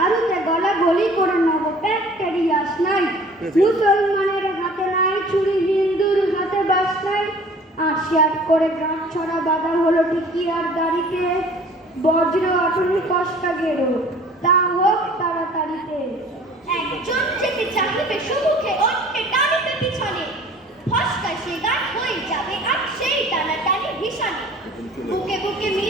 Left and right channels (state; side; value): normal; both; correlation 0.49